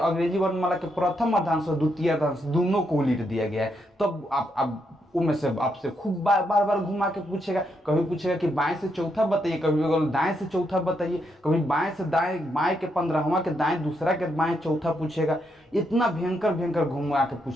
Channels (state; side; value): normal; both; correlation 0.79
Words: वर्णमाला के प्रथम अर्धांश और द्वितीय अर्धांश दोनों को उलट दिया गया है। तब आप उनमें से आपसे खूब बार बार घुमा के पूछेगा। कभी पूछेगा कि बाएं से चौथा बताइए, कभी दाएं से चौथा बताइए, कभी बाएं से दाएं, बाएं के 15वां के दाएं, दूसरा के बाएं चौथा पूछेगा। इतना भयंकर घुमा के